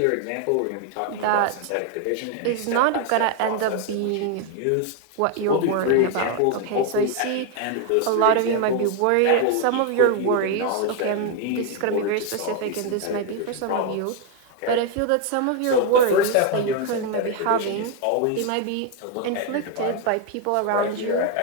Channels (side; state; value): both; different; correlation 0.01